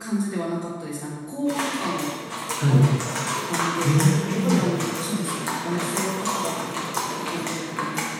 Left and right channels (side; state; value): both; identical; correlation 1.00